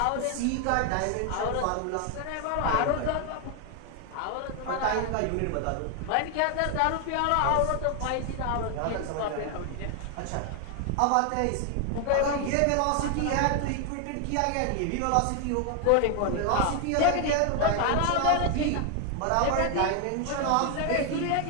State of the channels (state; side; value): different; both; correlation 0.00